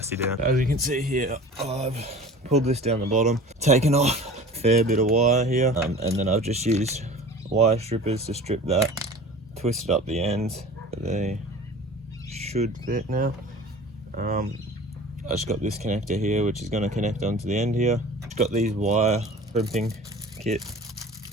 down. As you can see here, I've pulled this down the bottom, taken off a fair bit of wire here, and then I've just used wire strippers to strip that, twisted up the ends. They should fit now. I just got this connector here, which is going to connect onto the end here. Got these wire crimping kit.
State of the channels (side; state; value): both; normal; correlation 0.40